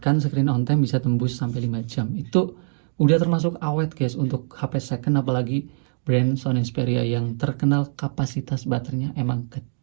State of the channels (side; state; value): left; silent; digital silence